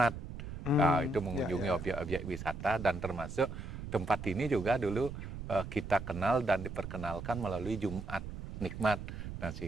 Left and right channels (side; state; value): right; noise; rumble, 8 dB below the sound